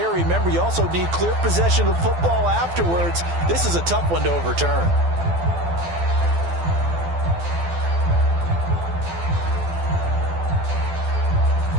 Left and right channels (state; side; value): late; left; 12 ms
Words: Remember, you also need clear possession of football afterwards. This is a tough one to overturn.